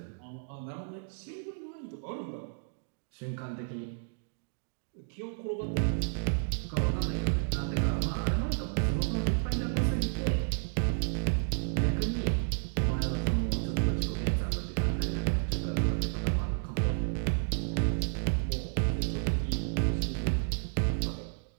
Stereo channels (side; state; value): left; silent; digital silence